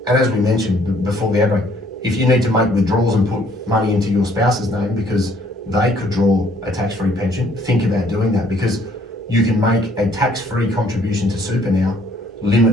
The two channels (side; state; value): both; normal; correlation 0.62